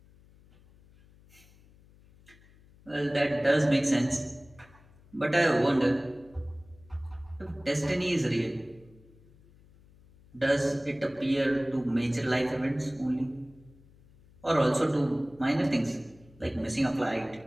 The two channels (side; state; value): left; noise; hum, 26 dB below the sound